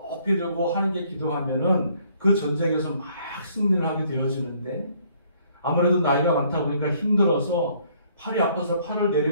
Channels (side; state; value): both; inverted; correlation -0.63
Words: 들고 하나님께 기도하면은 그 전쟁에서 막 승리를 하게 되어지는데 아무래도 나이가 많다 보니까 힘들어서 팔이 아파서 팔을